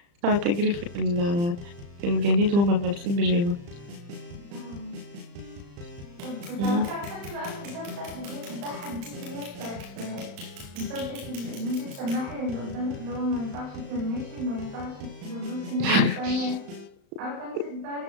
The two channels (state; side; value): late; left; 35 ms